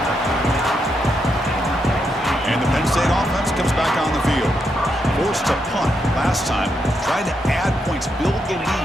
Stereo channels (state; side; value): normal; both; correlation 0.81